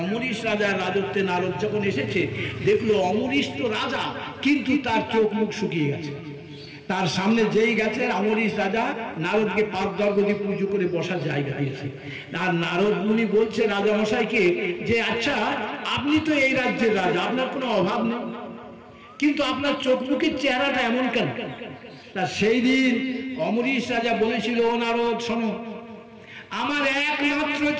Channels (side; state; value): both; identical; correlation 1.00